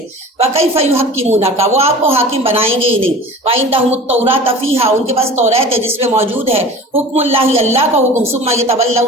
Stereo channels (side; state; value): both; normal; correlation 0.39